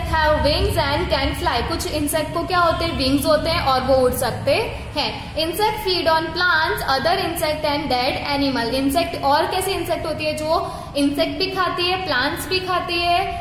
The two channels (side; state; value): both; identical; correlation 1.00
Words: have wings and can fly, कुछ इंसेक्ट को क्या होते हैं? विंग्स होते हैं और वो उड़ सकते हैं. Insect feed on plants, other insect and dead animal, insect और कैसे इंसेक्ट होती है? जो इंसेक्ट भी खाती है, प्लांट्स भी खाती